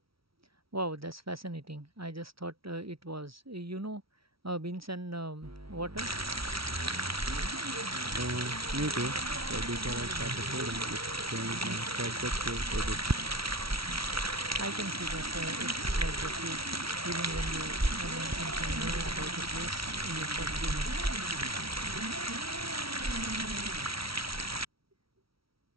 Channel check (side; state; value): left; late; 0.75 ms